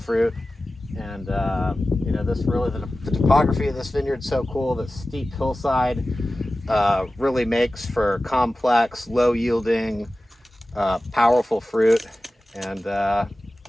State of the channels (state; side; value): normal; both; correlation 0.95